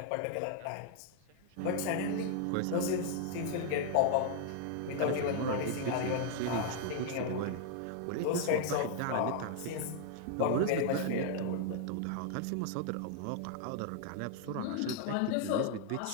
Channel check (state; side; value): different; both; correlation 0.00